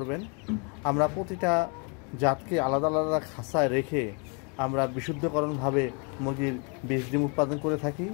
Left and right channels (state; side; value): quieter; right; 36.0 dB